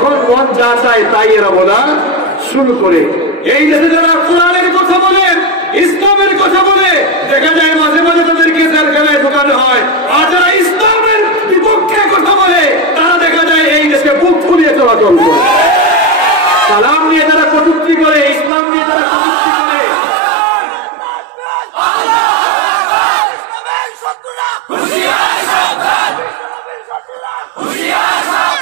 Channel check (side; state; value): left; drops out; at 18.5 s